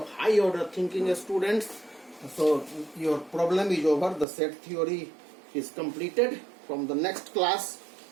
high order thinking, students. So your problem is over. The set theory is completed. From the next class,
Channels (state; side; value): drops out; left; at 4.2 s